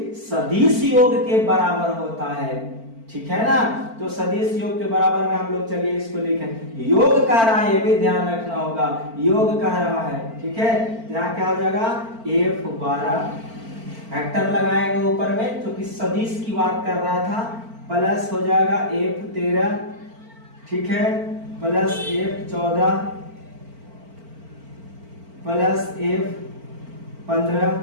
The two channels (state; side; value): late; left; 4.4 ms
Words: सदिश योग के बराबर होता है, ठीक है ना। तो सदिश योग के बराबर में हम लोग चलिए इसको लिखें। योग कह रहा है, ये भी ध्यान रखना होगा, योग कह रहा है, ठीक है। यहाँ क्या हो जाएगा F12, वेक्टर लगाएंगे ऊपर में, क्योंकि सदिश की बात कर रहा था, प्लस हो जाएगा F13, ठीक है, प्लस F14, प्लस F15,